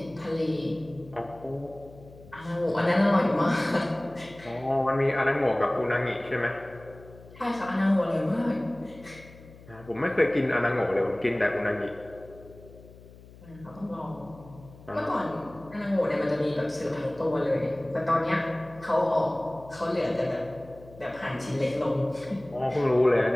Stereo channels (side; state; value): left; noise; hum, 21 dB below the sound